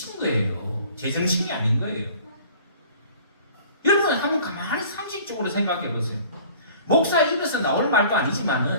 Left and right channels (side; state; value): both; inverted; correlation -0.49